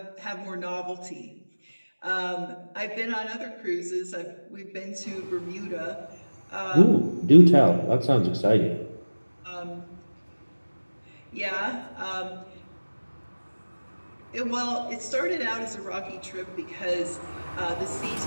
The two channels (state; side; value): inverted; both; correlation -1.00